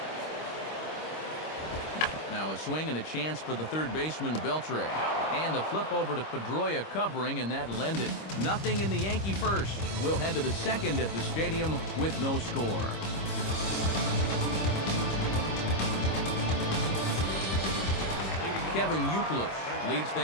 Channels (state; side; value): late; right; 25 ms